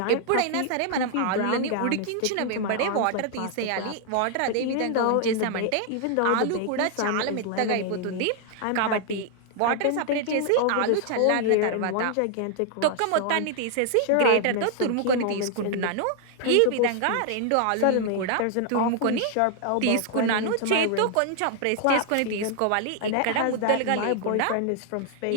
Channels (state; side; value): different; both; correlation 0.00